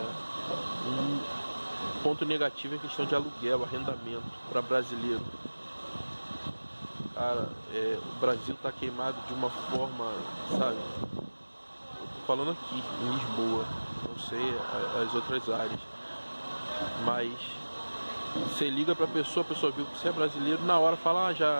um ponto negativo é a questão de aluguel, arrendamento para brasileiro. Cara, o Brasil tá queimado de uma forma, sabe? Eu tô falando aqui em Lisboa, não sei as outras áreas, mas você liga pra pessoa, a pessoa viu que você é brasileiro, na hora fala,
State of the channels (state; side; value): inverted; both; correlation -1.00